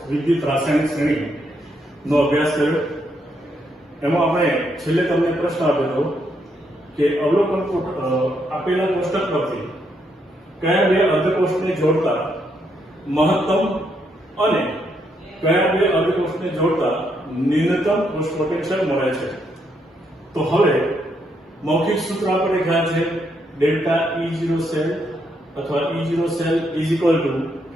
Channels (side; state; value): both; normal; correlation 0.76